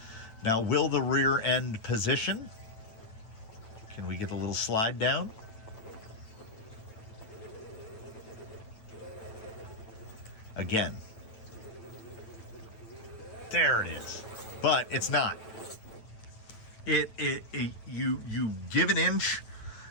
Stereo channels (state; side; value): late; right; 9.1 ms